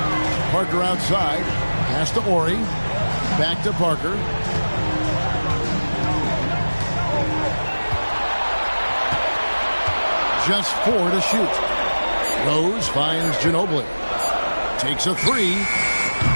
Parker outside. Pass to Ori. Back to Parker. Just 4 to shoot. Rose finds Ginobili. Takes a 3.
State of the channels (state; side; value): inverted; both; correlation -1.00